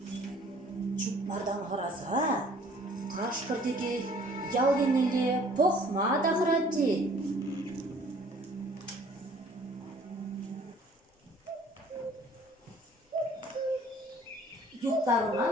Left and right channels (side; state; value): both; normal; correlation 0.55